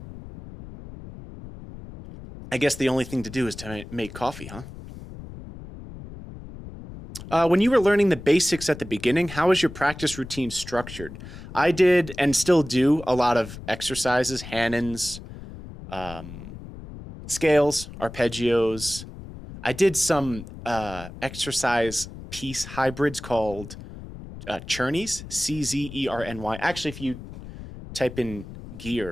I guess the only thing to do is to make coffee, huh? When you were learning the basics at the beginning, how was your practice routine structured? I did and still do a lot of exercises, Hannons, scales, arpeggios. I did some exercise piece hybrids called Czerny, Czerny. Actually, if you type in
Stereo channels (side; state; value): left; noise; rumble, 13 dB below the sound